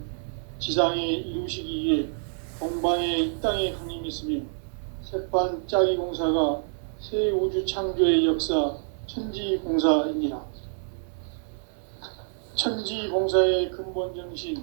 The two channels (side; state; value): left; silent; 57 dB below the other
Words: 지상에 이루시기 위해 동방에 이 땅에 강림했으며 새판짜기 공사가 새 우주 창조의 역사 천지공사이니라. 천지공사의 근본